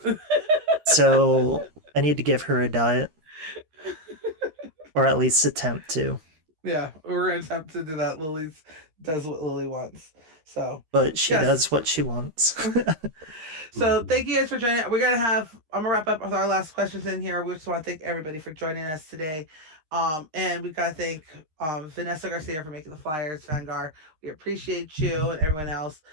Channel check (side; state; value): left; late; 13 ms